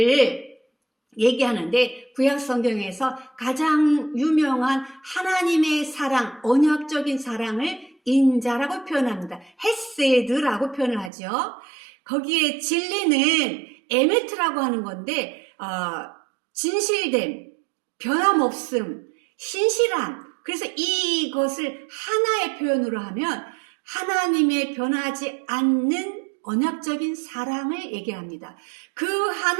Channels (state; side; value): drops out; left; at 11.1 s